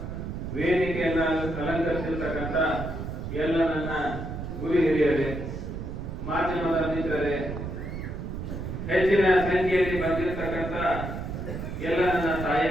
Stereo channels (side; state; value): right; noise; rumble, 6 dB below the sound